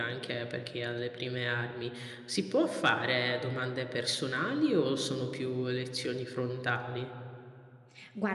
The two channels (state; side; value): identical; both; correlation 1.00